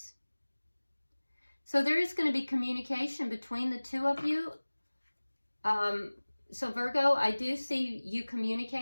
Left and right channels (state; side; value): inverted; both; correlation -1.00